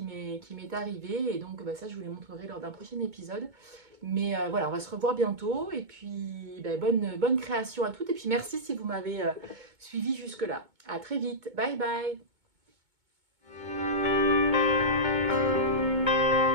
m'est arrivée. Et donc ça, je vous les montrerai lors d'un prochain épisode. Mais voilà, on va se revoir bientôt. Et puis bonne création à toutes. Et puis merci si vous m'avez suivi jusque-là. À très vite. Bye bye.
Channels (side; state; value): left; late; 2.2 ms